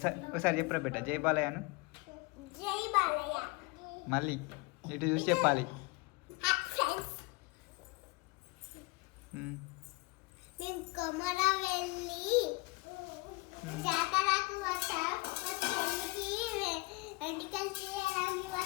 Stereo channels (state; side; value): quieter; right; 25.8 dB